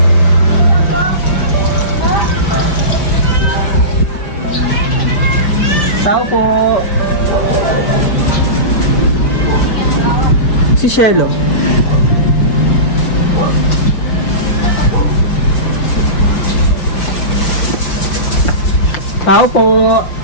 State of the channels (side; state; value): right; late; 5.1 ms